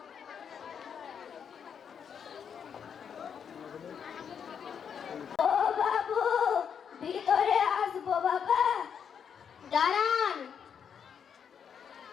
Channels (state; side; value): quieter; right; 7.5 dB